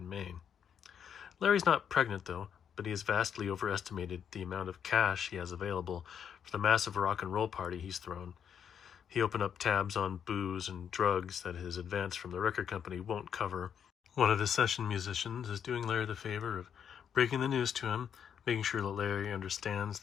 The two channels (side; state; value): right; quieter; 8.1 dB